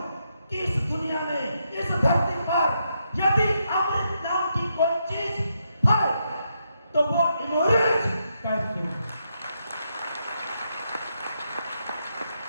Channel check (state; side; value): inverted; both; correlation -0.81